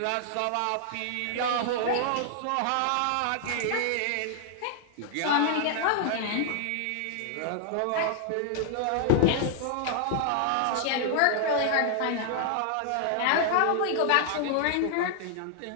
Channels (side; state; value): both; different; correlation -0.01